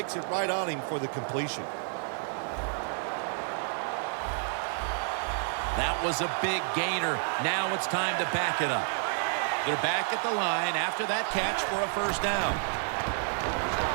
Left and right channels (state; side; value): silent; left; 55 dB below the other